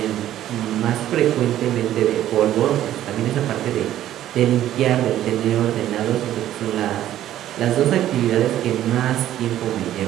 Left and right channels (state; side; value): quieter; left; 12.5 dB